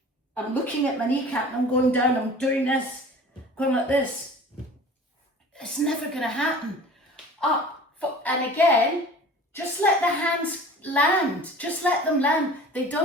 I'm looking at my kneecap and I'm going down, I'm doing this, going like this. It's never going to happen. Up, and again, just let the hands land. Just let them land. They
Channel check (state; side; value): normal; both; correlation 0.42